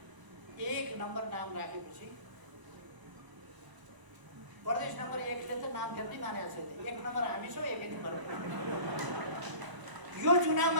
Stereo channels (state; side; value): late; left; 1.0 ms